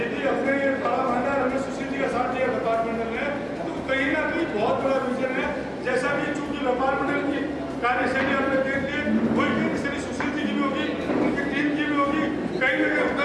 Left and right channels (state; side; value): identical; both; correlation 1.00